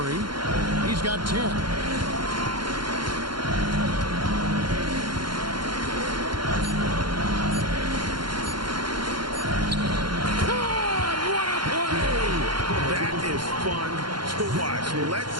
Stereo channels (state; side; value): late; left; 0.72 ms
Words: He's got 10. Fun to watch. Lets